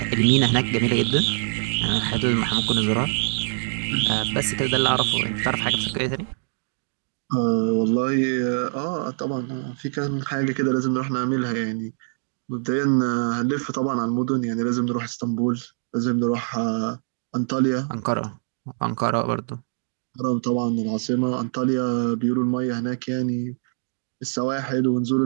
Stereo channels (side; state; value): left; silent; digital silence